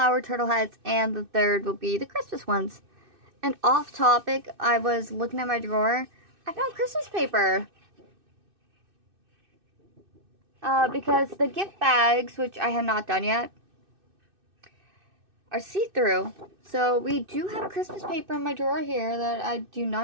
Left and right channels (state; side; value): late; left; 2.6 ms